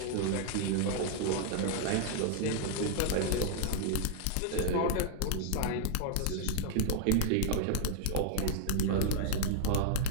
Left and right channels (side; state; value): both; different; correlation -0.01